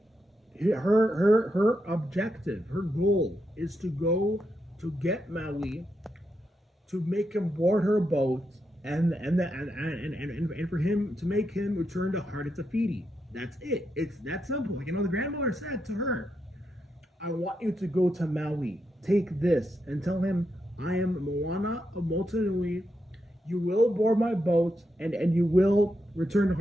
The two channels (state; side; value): normal; both; correlation 0.83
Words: her objective, her goal is to go to get Maui, to make him board her boat, and for him to make him return to Heart of Tafiti. That's it. It's that simple. The grandmother said to her, "I want you to go to Maui. Take this and tell him I am Moana of Motunui. You will board my boat, and you will return to